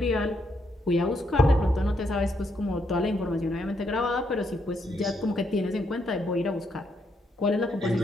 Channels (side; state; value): both; normal; correlation 0.76